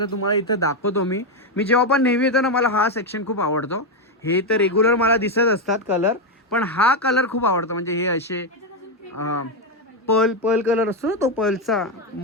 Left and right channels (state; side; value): normal; both; correlation 0.06